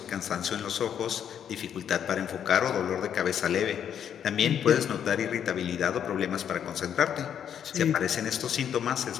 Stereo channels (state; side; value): quieter; right; 8.9 dB